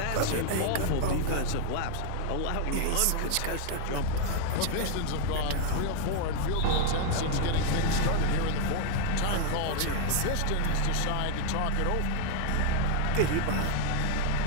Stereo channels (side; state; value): both; different; correlation 0.00